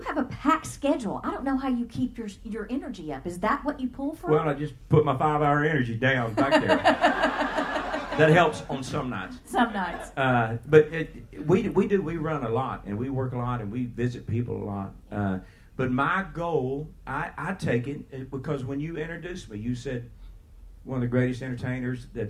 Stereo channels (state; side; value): identical; both; correlation 1.00